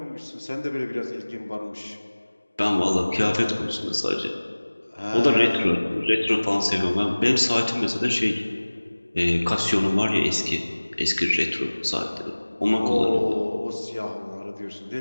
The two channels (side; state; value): both; inverted; correlation -1.00